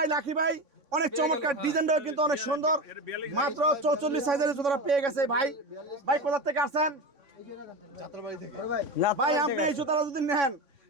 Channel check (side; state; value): left; late; 3.6 ms